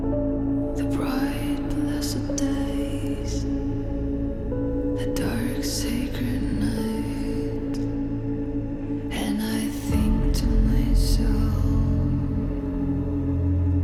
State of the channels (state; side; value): identical; both; correlation 1.00